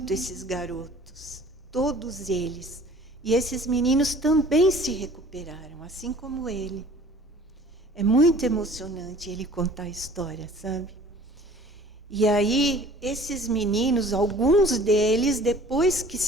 esses garotos, todos eles. E esses meninos também se recuperaram, assim como ele. É muito emocionante ele contar a história, sabe? E aí, esses meninos, alguns deles, depois que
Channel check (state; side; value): normal; both; correlation 0.49